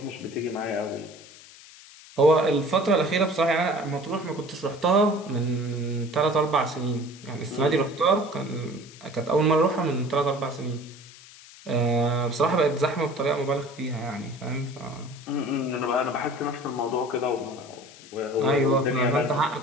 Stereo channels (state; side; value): noise; left; hiss, 20 dB below the sound